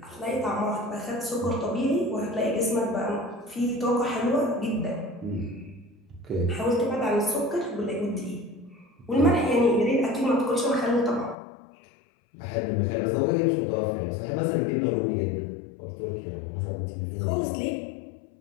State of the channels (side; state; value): right; drops out; at 11.4 s